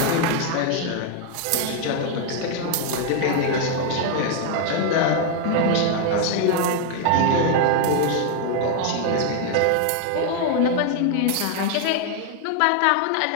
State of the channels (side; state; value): both; different; correlation 0.00